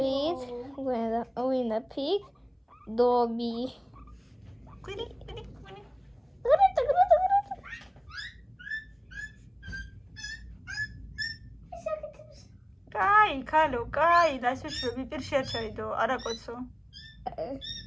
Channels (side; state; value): both; identical; correlation 1.00